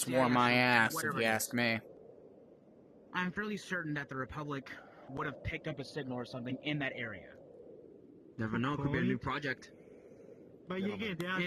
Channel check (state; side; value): identical; both; correlation 1.00